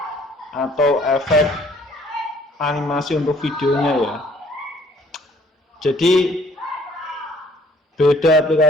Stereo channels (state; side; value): normal; both; correlation 0.59